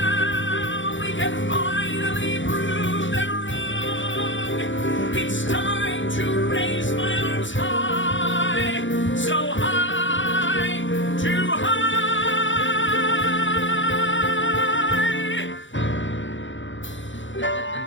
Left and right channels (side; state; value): right; late; 0.55 ms